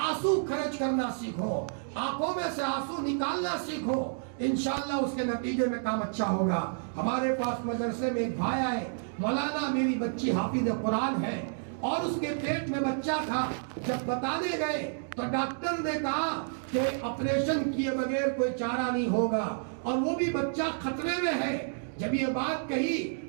خرچ کرنا سیکھو، آنکھوں میں سے آنسو نکالنا سیکھو، انشاءاللہ اس کے نتیجے میں کام اچھا ہوگا۔ ہمارے پاس مدرسے میں ایک بھائی آئے، مولانا میری بچی حافظ قرآن ہے اور اس کے پیٹ میں بچہ تھا، جب بتانے گئے تو ڈاکٹر نے کہا کہ آپریشن کیے بغیر کوئی چارہ نہیں ہوگا، اور وہ بھی بچہ خطرے میں ہے۔ جب یہ بات کہی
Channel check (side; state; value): left; silent; digital silence